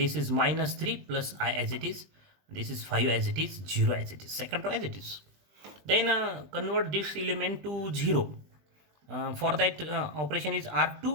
is minus 3 plus I as it is, this is 5 as it is, 0 as it is, second row as it is. Then convert this element to 0. For that operation is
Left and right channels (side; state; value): left; late; 20 ms